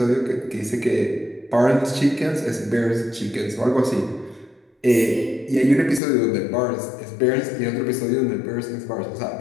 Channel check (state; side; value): drops out; right; at 6.0 s